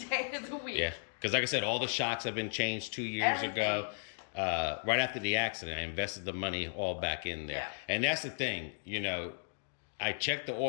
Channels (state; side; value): silent; right; digital silence